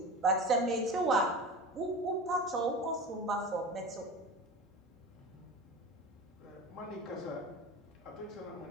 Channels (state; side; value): normal; both; correlation 0.32